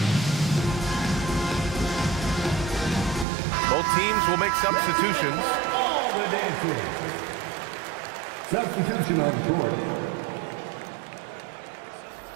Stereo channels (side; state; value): left; drops out; at 3.2 s